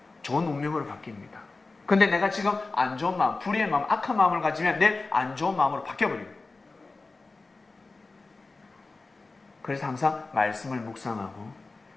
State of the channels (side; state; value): right; quieter; 3.6 dB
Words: 좋은 운명으로 바뀝니다. 근데 내가 지금 안 좋은 마음, 불의의 마음, 악한 마음을 가지면 내일 안 좋은 마음으로 바뀌어버립니다. 그래서 항상 말씀을 묵상하고